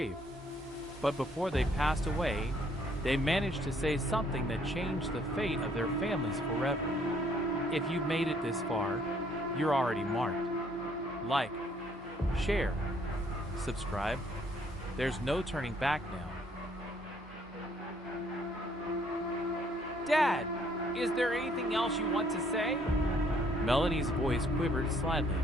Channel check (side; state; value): both; normal; correlation 0.65